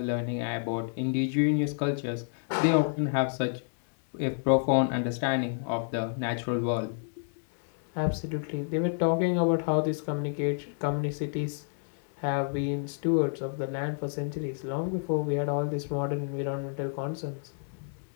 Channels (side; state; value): right; silent; digital silence